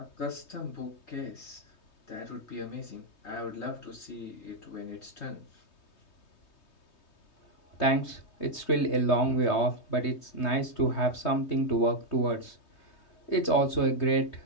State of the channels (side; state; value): right; late; 3.2 ms